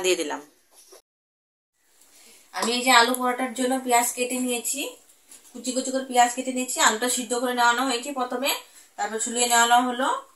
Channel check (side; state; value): both; identical; correlation 1.00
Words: দিয়ে দিলাম। আমি এই যে আলু পরোটার জন্য পেঁয়াজ কেটে নিয়েছি, কুচি কুচি করে পেঁয়াজ কেটে নিয়েছি। আলুটা সিদ্ধ করে নেওয়ানো হয়েছে প্রথমে, তারপর ছুলিয়ে নেওয়ানো হলো।